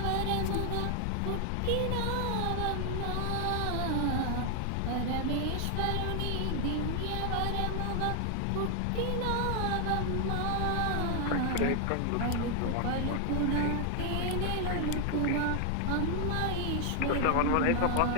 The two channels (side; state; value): both; different; correlation 0.00